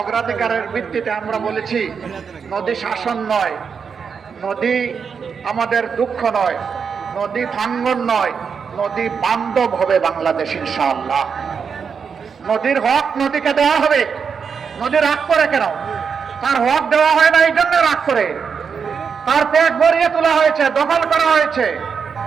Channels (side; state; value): left; quieter; 6.2 dB